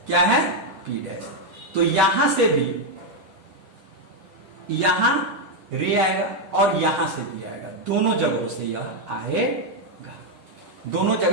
क्या है, P डैश। तो यहां से भी यहां रे आएगा और यहां से भी आएगा, दोनों जगहों से यह आएगा। दोनों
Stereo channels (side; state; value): left; late; 10 ms